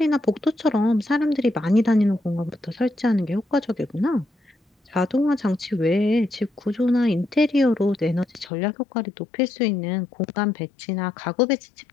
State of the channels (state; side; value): drops out; right; at 8.5 s